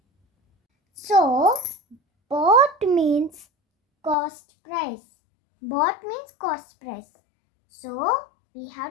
So bought means cost price. Bought means cost price. So we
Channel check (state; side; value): drops out; right; at 4.2 s